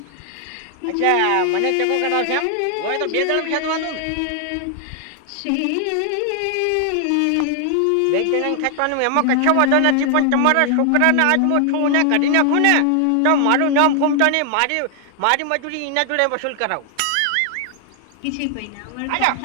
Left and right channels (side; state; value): both; different; correlation 0.00